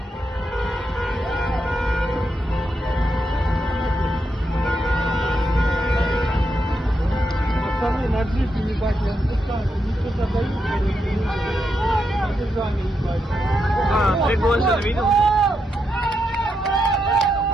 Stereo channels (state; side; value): normal; both; correlation 0.83